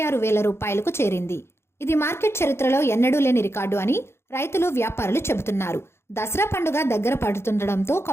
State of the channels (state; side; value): late; right; 0.12 ms